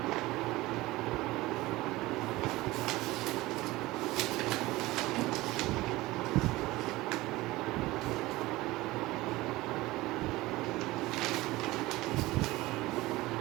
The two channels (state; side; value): quieter; left; 19.2 dB